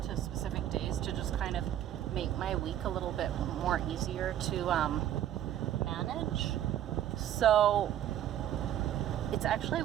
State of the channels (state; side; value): quieter; left; 11.5 dB